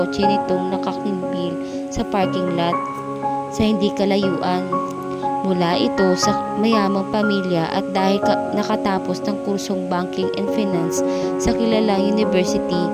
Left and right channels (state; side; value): identical; both; correlation 1.00